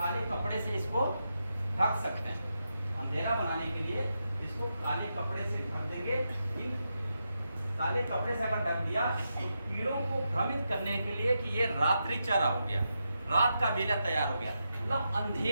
कपड़े से इसको ढक सकते हैं। अंधेरा बनाने के लिए इसको काले कपड़े से ढक देंगे। इन काले कपड़े से अगर ढक दिया तो कीड़ों को भ्रमित करने के लिए कि ये रात्रि चारा हो गया, रात का बेला तैयार हो गया। मतलब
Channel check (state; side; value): inverted; both; correlation -0.86